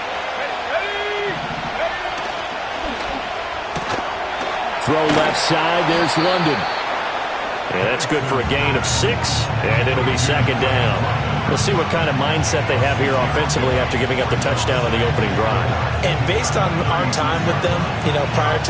Throw left side, there's London. Yeah, that's good for a gain of 6, and it'll be 2nd down. We'll see what kind of mindset they have here offensively after giving up the touchdown on the opening drive. And based on our time with them, prior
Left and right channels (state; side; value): identical; both; correlation 1.00